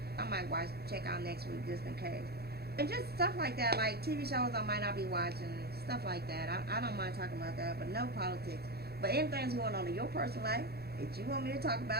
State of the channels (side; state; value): left; late; 0.46 ms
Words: I might check out next week just in case. And just stuff like that, like TV shows I might not be watching, stuff like that. I don't mind talking about that, but no politics. But anything's going on in your personal life that you want me to talk